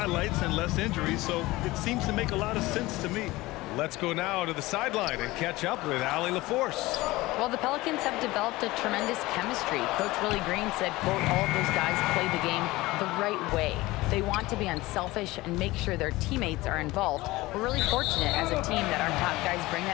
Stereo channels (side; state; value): right; quieter; 19.6 dB